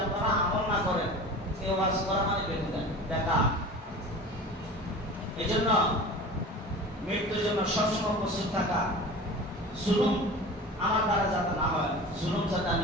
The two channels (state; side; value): normal; both; correlation 0.36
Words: আপনারা আমল না করেন, এই ওয়াজ করা মানে বেকার। এই জন্য মৃত্যুর জন্য সবসময় প্রস্তুত থাকা, জুলুম আমার দ্বারা যাতে না হয়, জুলুম যাতে